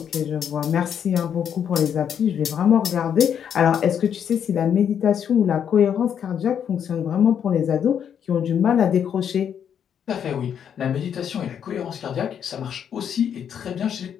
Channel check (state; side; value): quieter; right; 8.5 dB